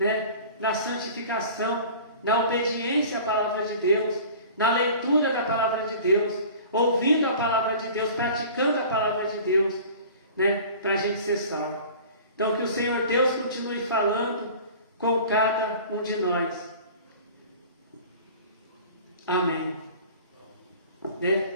na santificação, na obediência à palavra de Deus, na leitura da palavra de Deus, ouvindo a palavra de Deus, praticando a palavra de Deus, né, para a gente ser salvo. Então que o Senhor Deus continue falando com cada um de nós. Amém. Né?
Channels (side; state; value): both; inverted; correlation -0.42